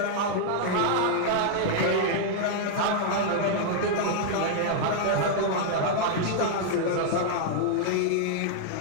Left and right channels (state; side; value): different; both; correlation -0.01